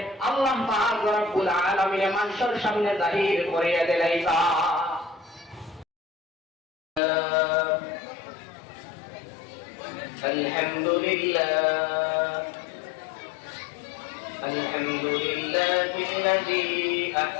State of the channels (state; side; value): drops out; right; at 7.0 s